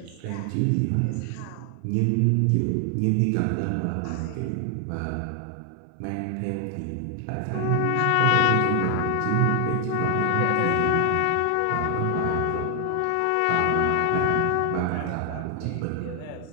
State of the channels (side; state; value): both; different; correlation 0.00